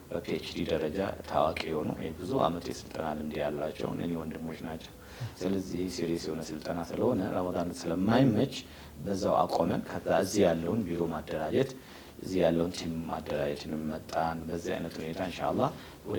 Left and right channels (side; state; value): both; identical; correlation 1.00